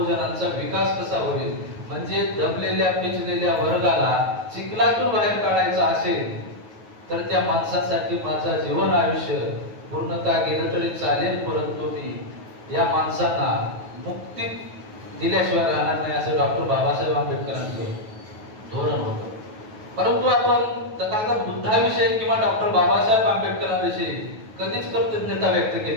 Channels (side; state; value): left; late; 9.3 ms